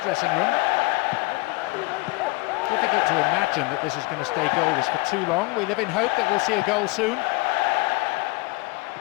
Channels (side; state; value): right; quieter; 24.0 dB